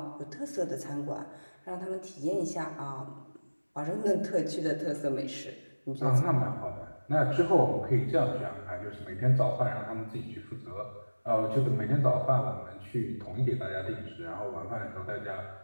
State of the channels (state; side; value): inverted; both; correlation -1.00